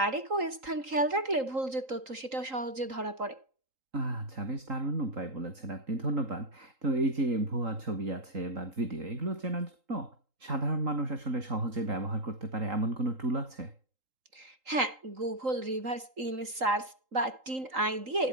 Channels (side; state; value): left; late; 3.8 ms